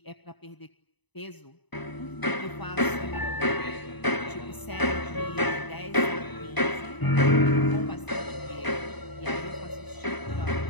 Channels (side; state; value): right; late; 1.0 ms